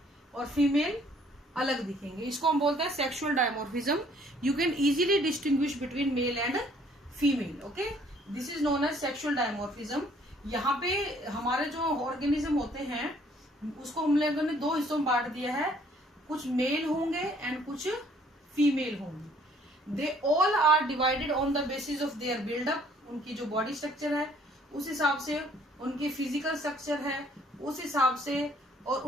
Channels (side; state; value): both; normal; correlation 0.61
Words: और फीमेल अलग दिखेंगे. इसको हम बोलते हैं sexual dimorphism. You can easily distinguish between male and female. Okay, this is known as sexual dimorphism. यहाँ पे हमारे जो ऑर्गेनिज्म होते हैं उसको हम लोगों ने दो हिस्सों में बांट दिया है. कुछ मेल होंगे एंड कुछ फीमेल होंगे. They all are divided on the basis of their buildup. उनकी जो बॉडी स्ट्रक्चर है उस हिसाब से, उनकी फिजिकल स्ट्रक्चर है उस हिसाब से, और